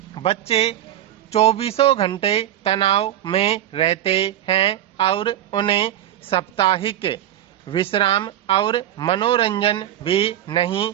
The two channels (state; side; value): quieter; left; 12.0 dB